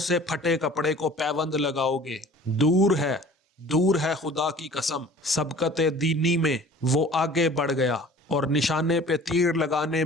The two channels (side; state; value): both; normal; correlation 0.46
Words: سے پھٹے کپڑے کو پیوند لگاؤ گے؟ دور ہے خدا کی قسم، سبقت دینی میں وہ آگے بڑھ گیا اور نشانے پہ تیر لگانے